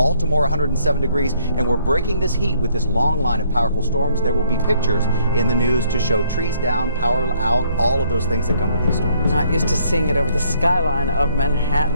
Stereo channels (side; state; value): both; inverted; correlation -0.65